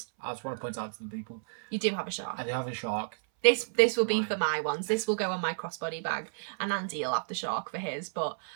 I just want to point out to the people. You do have a shark. I do have a shark. This will be for my ones. This will go on my crossbody bag, and Andy will have the shark for his. But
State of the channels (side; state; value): left; silent; 57 dB below the other